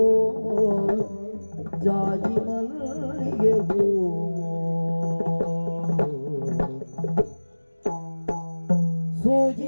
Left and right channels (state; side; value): inverted; both; correlation -1.00